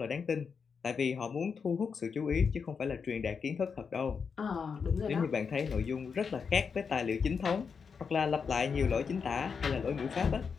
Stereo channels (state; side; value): quieter; right; 5.9 dB